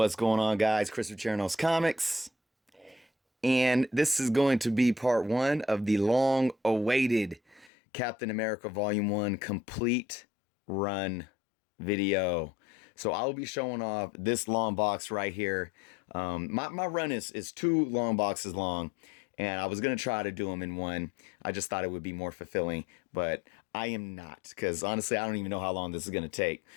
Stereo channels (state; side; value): drops out; right; at 7.7 s